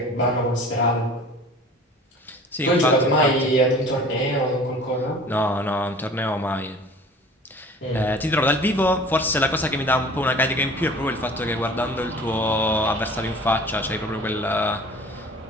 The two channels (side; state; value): both; normal; correlation 0.45